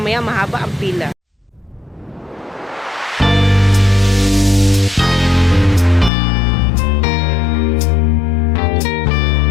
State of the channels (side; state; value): right; drops out; at 6.1 s